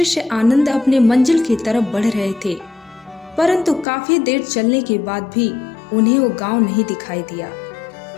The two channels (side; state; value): right; drops out; at 3.9 s